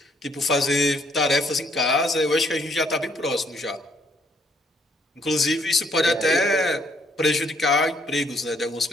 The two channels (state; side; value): normal; both; correlation 0.67